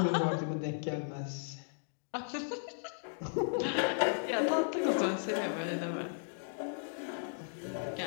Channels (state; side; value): silent; right; digital silence